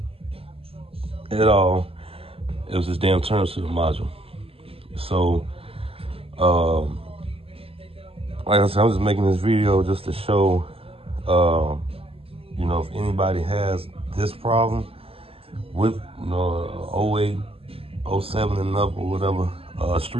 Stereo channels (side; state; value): left; late; 0.28 ms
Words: at all. It was this damn turn signal module. So, like I said, I'm just making this video just to show, you know, if anybody has this problem with, you know, 08, 07 and up or whatever,